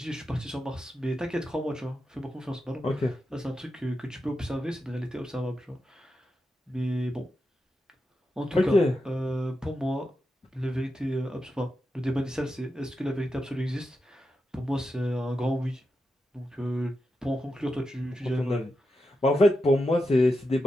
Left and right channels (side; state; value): both; normal; correlation 0.88